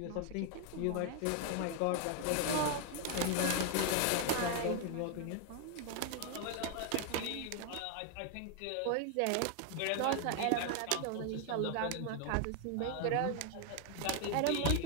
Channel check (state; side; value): different; both; correlation 0.00